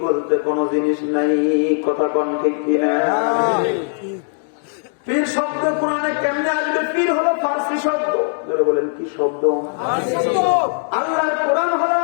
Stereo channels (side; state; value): right; silent; 66 dB below the other